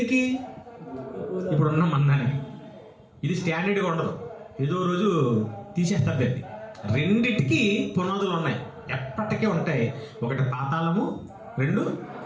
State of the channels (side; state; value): both; identical; correlation 1.00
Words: ఇప్పుడున్న మందానికి. ఇది స్టాండర్డ్గా ఉండదు, ఏదో రోజు తీసేస్తారు దాన్ని. 2టికి పునాదులు ఉన్నాయి, ఎప్పటికీ ఉంటాయి. ఒకటి పాతాళము, 2